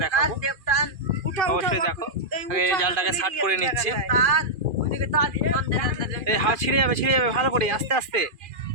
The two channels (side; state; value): left; late; 2.4 ms